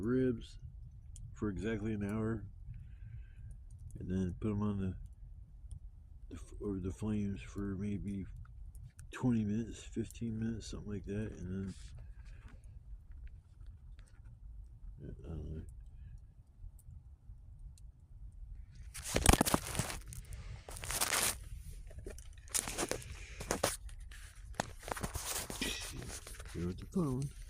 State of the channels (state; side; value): identical; both; correlation 1.00